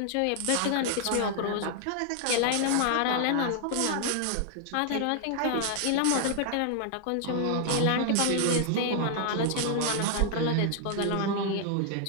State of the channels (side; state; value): both; different; correlation 0.00